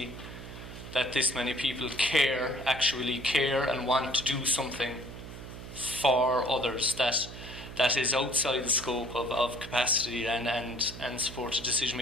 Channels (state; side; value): noise; right; hum, 12 dB below the sound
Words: that this many people actually care and want to do something for others that is outside the scope of capacity and supported decision